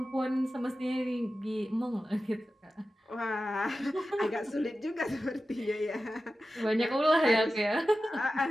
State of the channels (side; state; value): both; normal; correlation 0.93